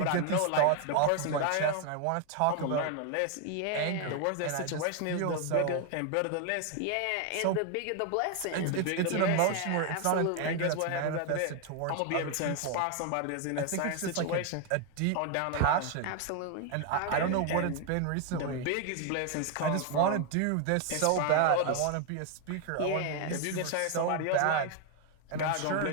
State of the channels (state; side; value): different; both; correlation 0.00